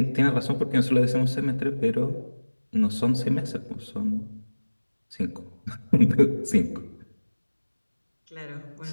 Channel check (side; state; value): both; inverted; correlation -1.00